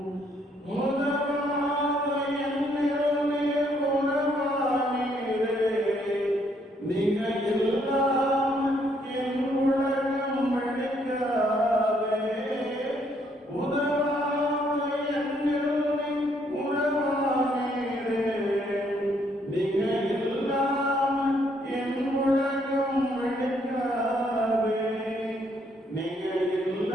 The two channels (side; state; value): both; normal; correlation 0.70